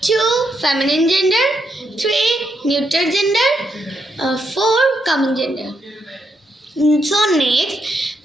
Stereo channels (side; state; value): both; normal; correlation 0.79